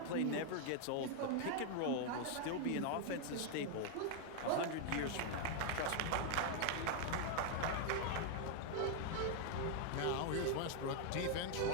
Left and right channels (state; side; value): different; both; correlation 0.00